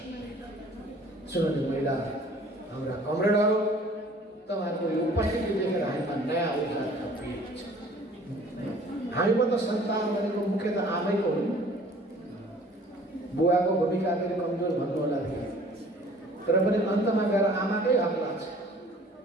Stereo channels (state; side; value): normal; both; correlation 0.52